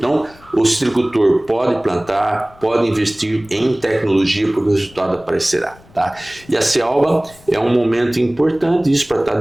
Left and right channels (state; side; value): noise; left; rumble, 25 dB below the sound